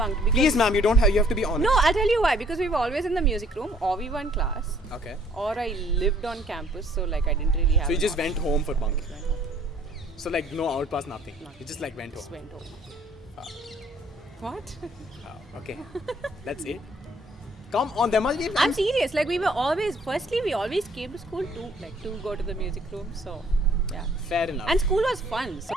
Because Please, ma'am, you have to be honest. No, I'll tell you why. Because we were always in the music room, or we were in class, Okay. or I lived on campus, so like I didn't really have. So you an just option. went home for bunking. Went home. So like no outpass, nothing. You just like went Just home. went home. What? Okay. That's it. Come on, there must be. I'm serious. Like we always came to school to go to the music room. So yeah. Fair enough. And school was fun. So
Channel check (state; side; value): normal; both; correlation 0.60